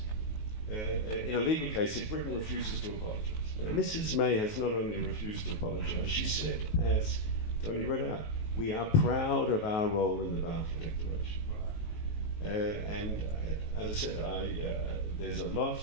in a legal case if Britain refuses to apologize. Now, Mrs. May has not only refused to apologize, she said, as Tony read out, we are proud of our role in the Balfour Declaration. And as I said, there's a lot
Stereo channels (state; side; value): late; right; 19 ms